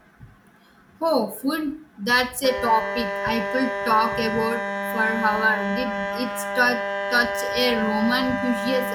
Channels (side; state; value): both; identical; correlation 1.00